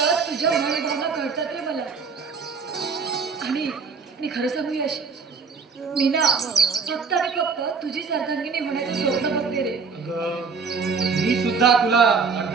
तुझ्या भावना कळतात रे मला. आणि मी खरं सांगू यश, मी ना फक्त आणि फक्त तुझीच अर्धांगिनी होण्याचं स्वप्न बघते रे. अगं मी सुद्धा तुला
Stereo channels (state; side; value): quieter; left; 5.3 dB